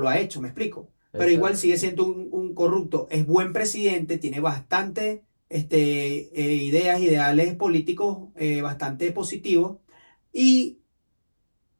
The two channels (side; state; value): both; inverted; correlation -1.00